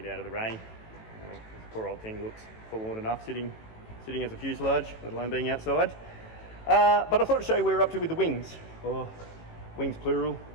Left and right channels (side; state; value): right; late; 18 ms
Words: out of the rain. The poor old thing looks forlorn enough sitting as a fuselage, let alone being outside. But I thought I'd show you where we're up to with the wings, or wings plural